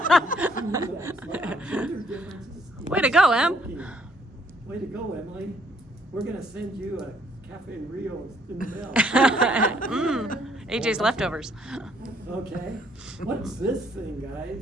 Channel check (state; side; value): normal; both; correlation 0.66